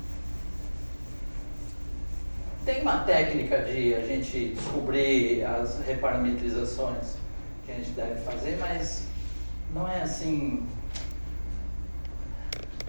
Tem uma técnica de a gente descobrir as reparametrizações que a gente deve fazer, mas não é assim.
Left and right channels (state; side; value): inverted; both; correlation -1.00